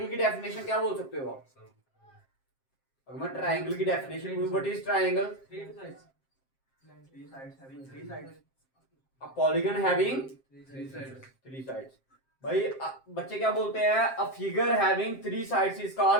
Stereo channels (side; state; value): right; late; 7.5 ms